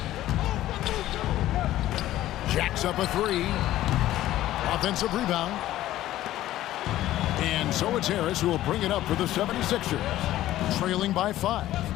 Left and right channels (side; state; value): right; quieter; 14.3 dB